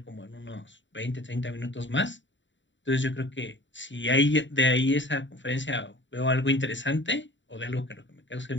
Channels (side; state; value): right; late; 0.54 ms